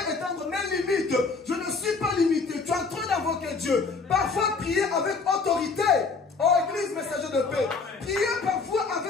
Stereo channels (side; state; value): right; quieter; 4.5 dB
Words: mes limites. Je ne suis pas limité. Tu es en train d'invoquer Dieu. Parfois, prier avec autorité. Oh, Église, messager de paix. Prier parfois